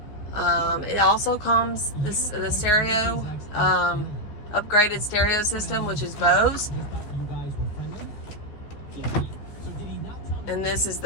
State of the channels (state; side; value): late; right; 14 ms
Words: It also comes the stereo, upgraded stereo system, which is Bose. And this is